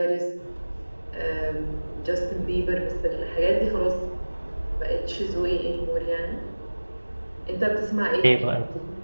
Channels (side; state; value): both; inverted; correlation -1.00